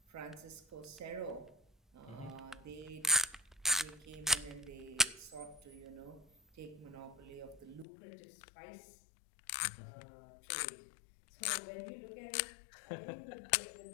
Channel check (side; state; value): right; drops out; at 7.9 s